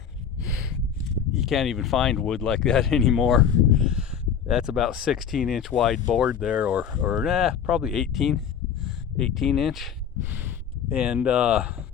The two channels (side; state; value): right; quieter; 7.8 dB